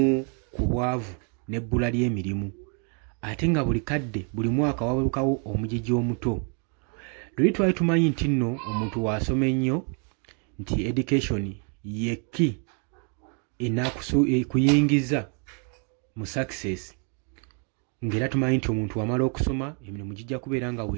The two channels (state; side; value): quieter; left; 39.5 dB